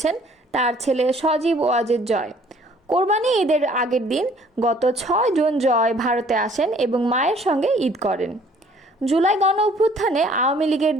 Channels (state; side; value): normal; both; correlation 0.57